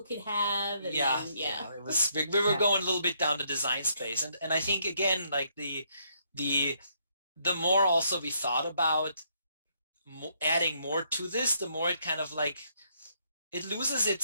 could have. And it was, we were going a little bit down the design space, and I think again, like the more also we thought about adding more to this, the more it kind of like it loses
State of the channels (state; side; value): inverted; both; correlation -0.72